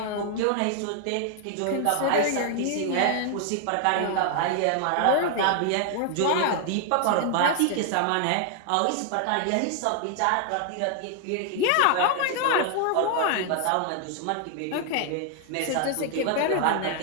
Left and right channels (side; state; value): both; different; correlation 0.00